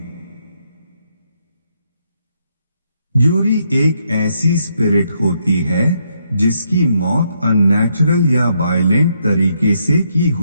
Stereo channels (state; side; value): inverted; both; correlation -0.76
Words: यूरी एक ऐसी स्पिरिट होती है जिसकी मौत अननेचुरल या वायलेंट तरीके से की